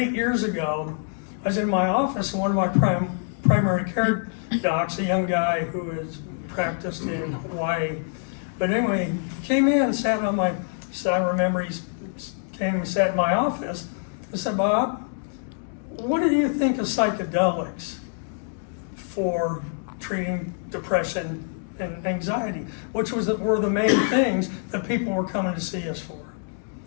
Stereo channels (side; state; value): right; silent; 61 dB below the other